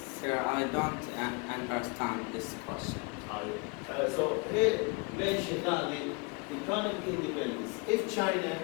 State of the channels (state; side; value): quieter; right; 31.0 dB